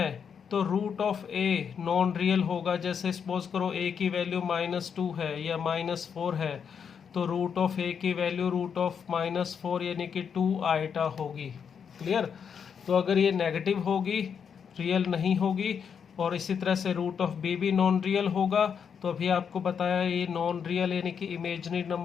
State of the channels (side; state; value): right; quieter; 7.0 dB